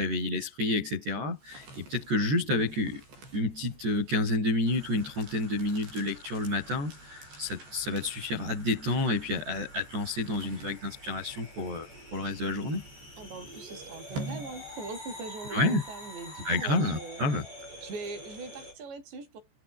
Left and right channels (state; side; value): late; left; 14 ms